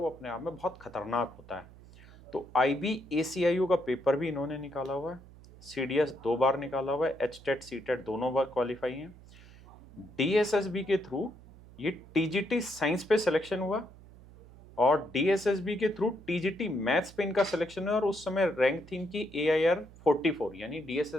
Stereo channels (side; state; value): right; noise; hum, 21 dB below the sound